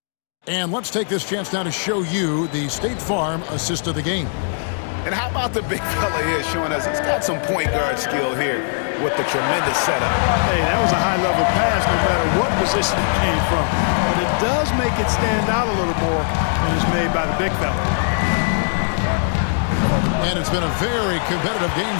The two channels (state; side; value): silent; right; digital silence